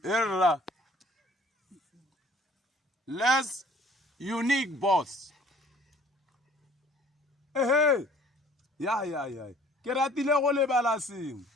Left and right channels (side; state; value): both; normal; correlation 0.54